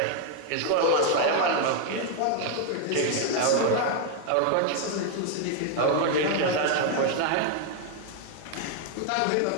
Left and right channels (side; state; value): both; different; correlation 0.00